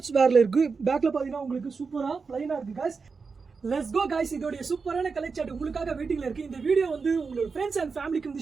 வேரில் இருக்குது. பேக்கில் பார்த்தீங்கன்னா உங்களுக்கு சூப்பராக ப்ளைனாக இருக்குது காய்ஸ். Let's go guys. இதோட சூப்பரான கலெக்ஷன் உங்களுக்காக வெயிட்டிங்ல இருக்கு. இந்த வீடியோ உங்களோட ஃப்ரெண்ட்ஸ் அண்ட் ஃபேமிலிக்கு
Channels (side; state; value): left; quieter; 4.9 dB